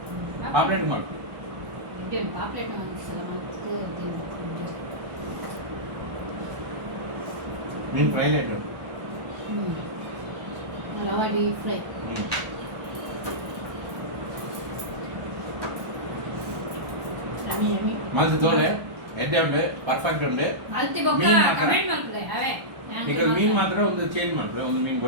ಪಾಪ್ಲೆಟ್ ಮಾಡು ಎಡ್ಡೆ ಉಂಟು ಪಾಪ್ಲೇಟ್ ಒಂದ್ಸಲ ಮಾಡ್ಕೊಂಡು ಮೀನು ಫ್ರೈ ಲೈಟ್ ರವಾ ಡೀಪ್ ಫ್ರೈ ಮಲ್ತು ತೋಳೆ ಎಡ್ಡೆ ಉಂಡು ಪರ್ಫೆಕ್ಟ್ ಉಂಡು ಮಲ್ತಿ ಬೊಕ್ಕ ಮೀನ್ ಮಾತ್ರ? ಕಮೆಂಟ್ ಮಾಡ್ತದೆ ಅವೇ ಈಗ ಮೀನು ಮಾತ್ರ ಒಂದು ಚೇಂಜ್ ಮಾಡ್ತಾರೆ ಒಂದು ಮೀನು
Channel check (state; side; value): late; left; 1.2 ms